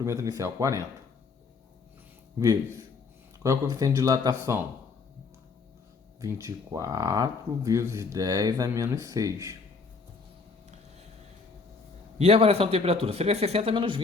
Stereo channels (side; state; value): right; quieter; 4.5 dB